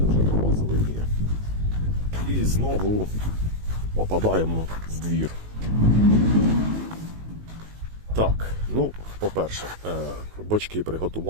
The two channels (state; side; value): late; left; 19 ms